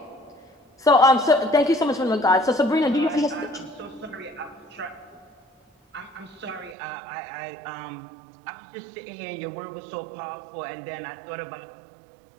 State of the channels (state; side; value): drops out; left; at 6.8 s